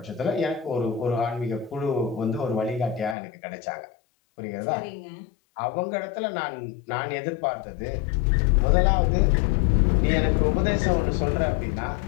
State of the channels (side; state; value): right; drops out; at 3.2 s